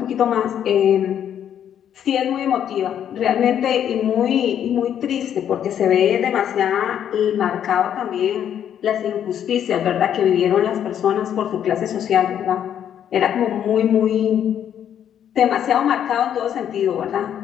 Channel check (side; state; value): right; quieter; 9.5 dB